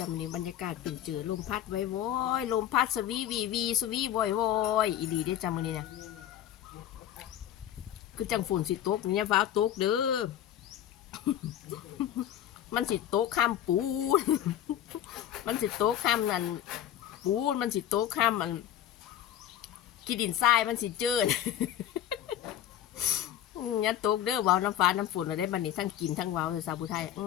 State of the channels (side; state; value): right; quieter; 11.3 dB